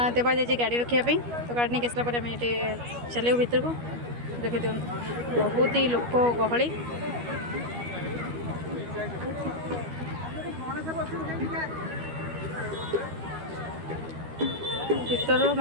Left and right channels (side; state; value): left; late; 12 ms